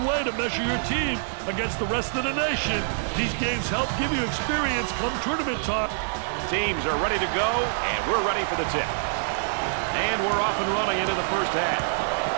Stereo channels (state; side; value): silent; left; 61 dB below the other